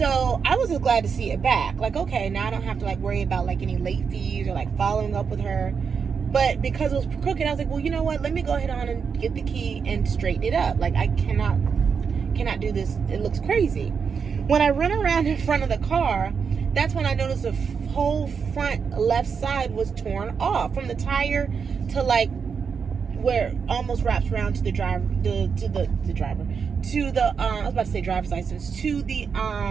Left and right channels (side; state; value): left; quieter; 6.1 dB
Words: I was just glad to see it back. Like, okay, now I don't have to like worry about like any late fees or like following up with her. But because it was crooked, I was like, well, you know what? Let me go ahead on and get the key and straighten it up. Like, I cannot do this. It looks crazy. When I run around in front of the car, that's when I noticed the whole front left side was torn off from the tire to like where it almost wraps around to the driver, I was about to say driver's license, to the